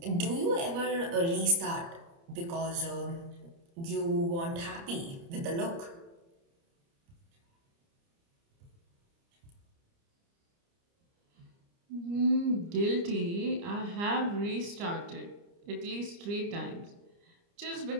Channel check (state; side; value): late; left; 29 ms